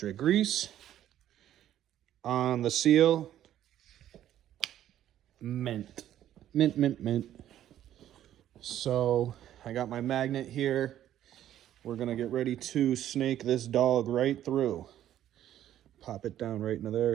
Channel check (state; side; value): quieter; left; 11.8 dB